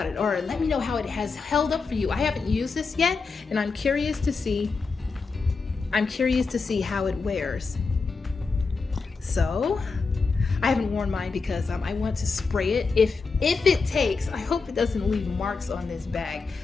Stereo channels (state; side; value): quieter; right; 4.5 dB